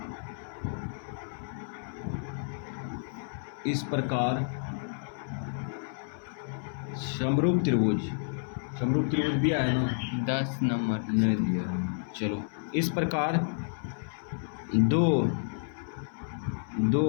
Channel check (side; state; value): right; silent; 57 dB below the other